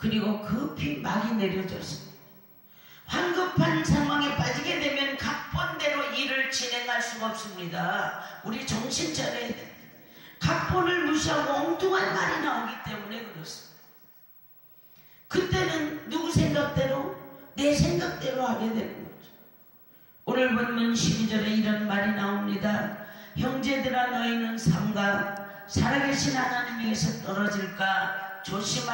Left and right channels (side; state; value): both; identical; correlation 1.00